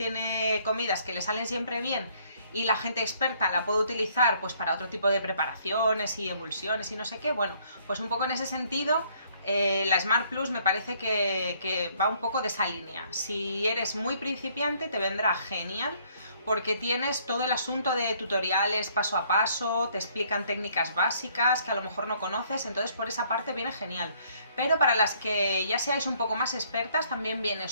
comidas que le salen siempre bien, y la gente experta la puede utilizar pues para otro tipo de preparaciones y emulsiones y no sé qué. Bueno, pues un poco en ese sentido la Smart Plus me parece que va un poco de esa línea. Si eres muy principiante te vendrá genial porque tienes todo el asunto de tutoriales paso a paso, te explican técnicas básicas que a lo mejor no conoces, entonces por esa parte viene genial. Pero para las que ya seáis un poco más expertas también viene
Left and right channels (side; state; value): both; inverted; correlation -0.64